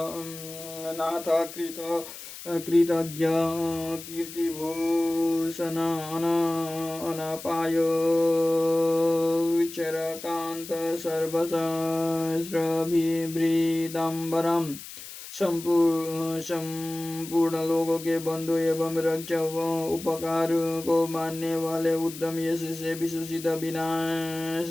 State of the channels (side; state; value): left; noise; hiss, 13 dB below the sound